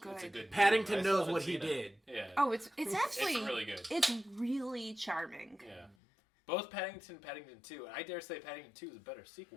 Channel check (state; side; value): drops out; right; at 6.0 s